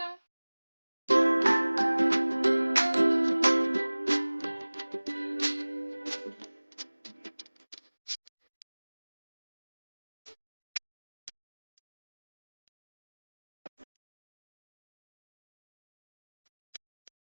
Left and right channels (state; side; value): inverted; both; correlation -1.00